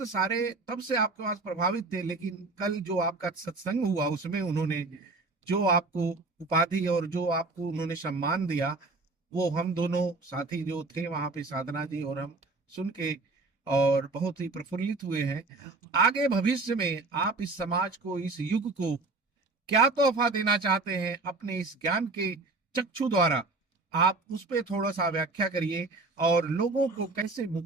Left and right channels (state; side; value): quieter; left; 3.4 dB